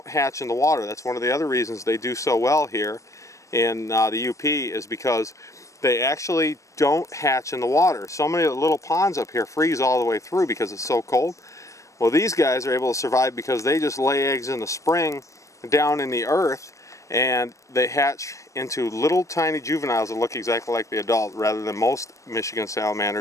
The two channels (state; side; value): late; right; 0.15 ms